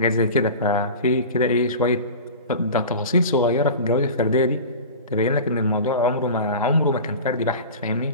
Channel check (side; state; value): both; inverted; correlation -0.34